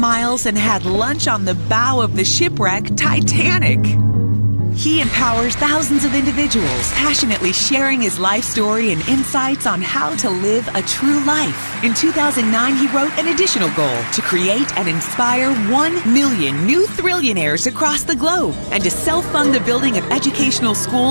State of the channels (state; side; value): inverted; both; correlation -1.00